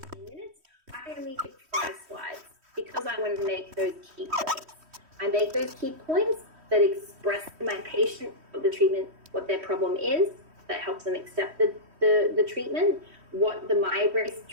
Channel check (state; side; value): late; left; 3.1 ms